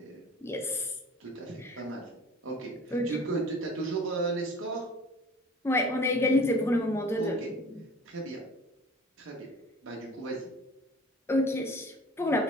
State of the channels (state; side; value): normal; both; correlation 0.45